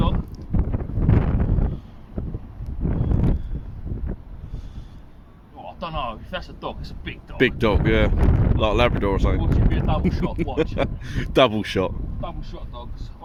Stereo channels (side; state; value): both; identical; correlation 1.00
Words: I don't know, if that's a dog, it's a big dog. Big dog, yeah. Like a Labrador or something. Watch it be a double shot, watch. Double shot. Double shot dogs